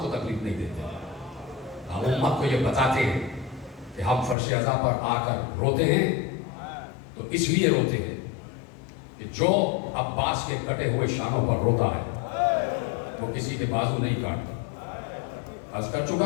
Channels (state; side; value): drops out; right; at 4.4 s